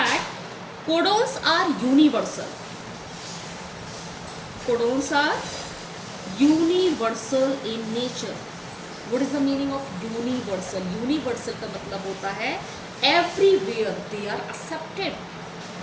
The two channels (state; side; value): identical; both; correlation 1.00